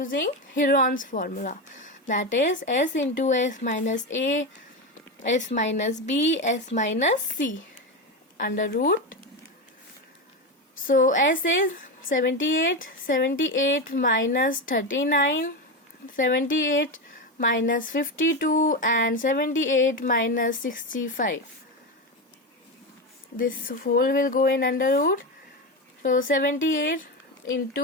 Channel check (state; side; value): normal; both; correlation 0.15